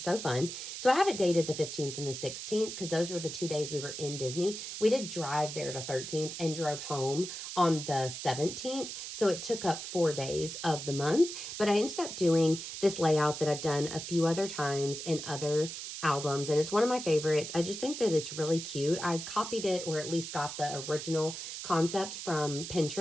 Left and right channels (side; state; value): right; noise; hiss, 8 dB below the sound